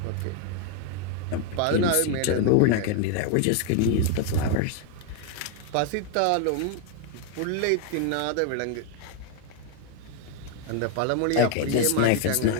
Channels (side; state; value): both; different; correlation 0.00